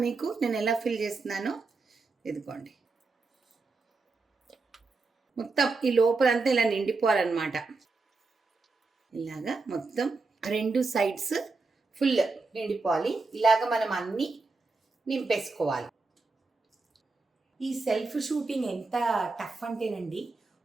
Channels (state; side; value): quieter; left; 3.9 dB